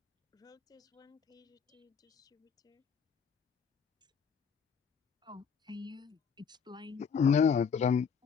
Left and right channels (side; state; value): right; quieter; 6.5 dB